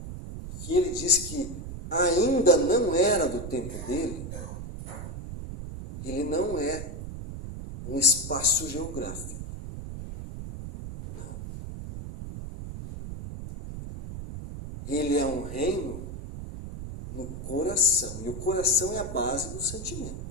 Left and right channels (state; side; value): noise; right; rumble, 8 dB below the sound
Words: e que ele diz que ainda não era do tempo dele, ele não é um espaço geográfico. Não. Ele é um reino no coração. E o coração é a base do